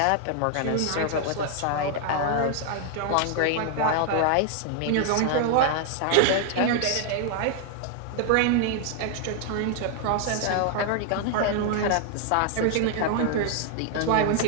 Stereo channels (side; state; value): both; different; correlation 0.00